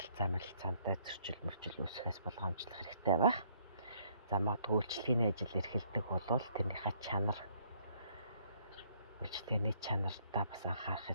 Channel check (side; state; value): both; inverted; correlation -0.65